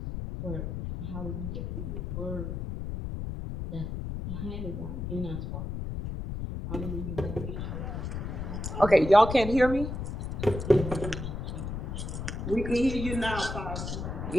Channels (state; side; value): noise; left; rumble, 5 dB below the sound